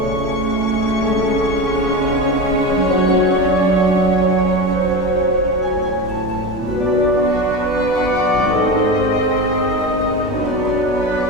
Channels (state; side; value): normal; both; correlation 0.23